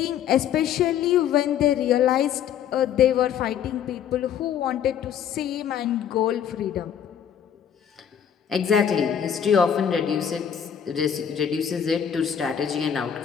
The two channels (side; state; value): right; quieter; 8.8 dB